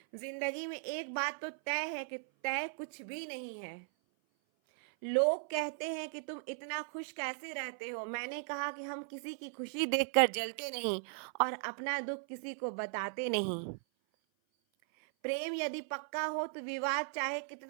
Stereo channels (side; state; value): left; silent; 53 dB below the other